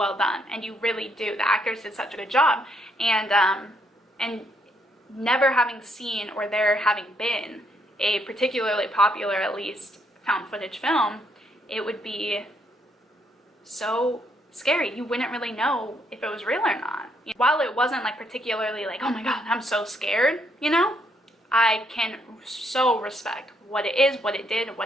done, and you really do. The actors did such a good job, and never having seen or there having been a particularly popular, at least, found footage film, it would be so scary. You wouldn't really know if it was real or not. While it wasn't like particularly like, oh my god, I'm so scared, you know, I can so respect what it is, what it did,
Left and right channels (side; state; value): both; normal; correlation 0.73